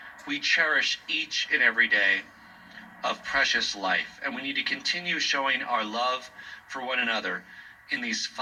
We cherish each and every day of precious life, and we need to continue showing our love for one another in these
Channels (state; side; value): identical; both; correlation 1.00